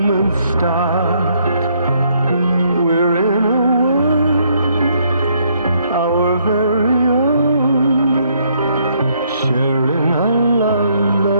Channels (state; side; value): inverted; both; correlation -0.70